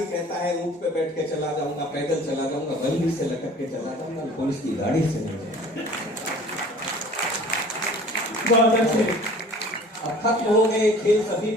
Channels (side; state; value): both; normal; correlation 0.47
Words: कहता है ऊंट पे बैठ के चला जाऊंगा, पैदल चला जाऊंगा, बल्ली से लटक के चला जाऊंगा, पुलिस की गाड़ी से नहीं जाऊंगा। अब खत्म हो गए खेल सभी